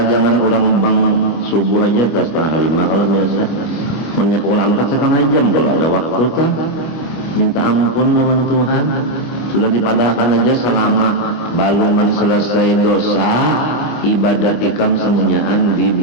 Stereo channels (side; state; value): right; late; 25 ms